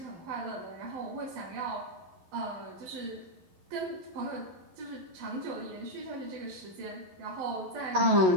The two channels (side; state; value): left; late; 11 ms